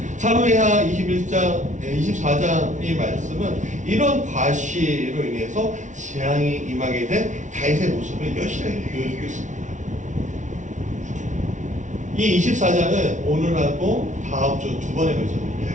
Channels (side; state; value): left; late; 0.36 ms